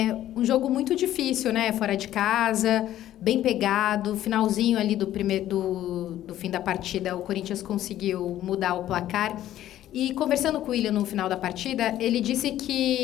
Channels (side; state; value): right; quieter; 12.8 dB